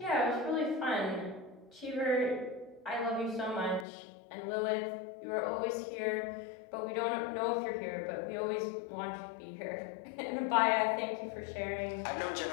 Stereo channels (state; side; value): drops out; right; at 3.9 s